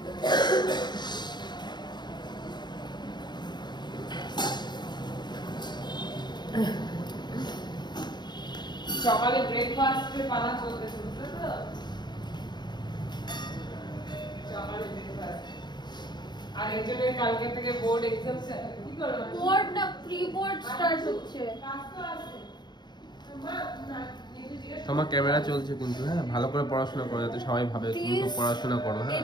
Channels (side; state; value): right; late; 0.21 ms